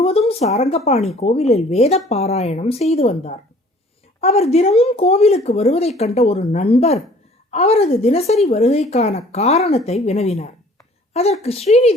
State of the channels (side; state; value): both; normal; correlation 0.53